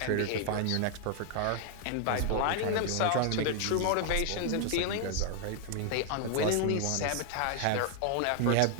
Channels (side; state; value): both; different; correlation 0.00